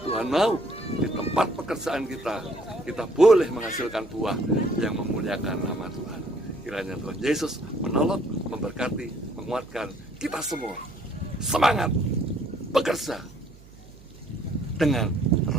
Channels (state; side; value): noise; right; hum, 22 dB below the sound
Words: Tuhan mau di tempat pekerjaan kita, kita boleh menghasilkan buah yang memuliakan nama Tuhan. Kiranya Tuhan Yesus menolong, memberkati, menguatkan kita semua. Semangat bekerja dengan